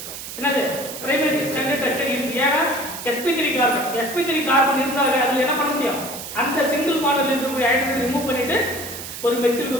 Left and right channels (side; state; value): right; noise; hiss, 10 dB below the sound